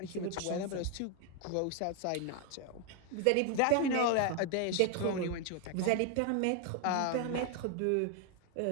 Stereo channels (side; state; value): both; different; correlation 0.01